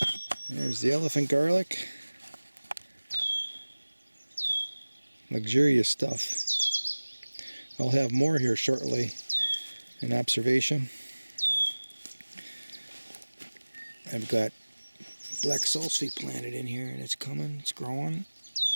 There's the elephant garlic. Luxurious stuff. I'll have more here shortly in observation. I've got black salsify planted in here and it's coming, it's growing.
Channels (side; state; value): both; inverted; correlation -1.00